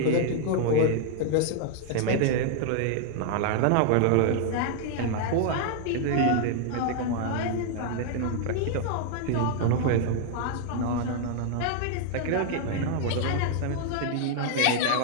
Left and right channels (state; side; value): different; both; correlation 0.00